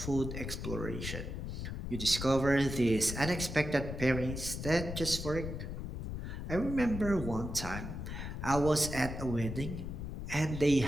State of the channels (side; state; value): left; noise; rumble, 6 dB below the sound